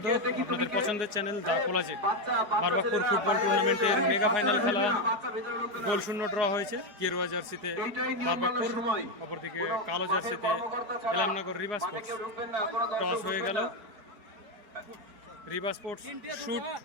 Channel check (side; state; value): left; late; 4.8 ms